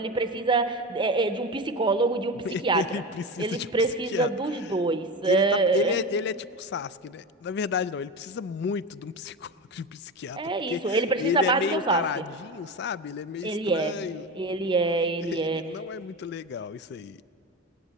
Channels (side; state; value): both; normal; correlation 0.23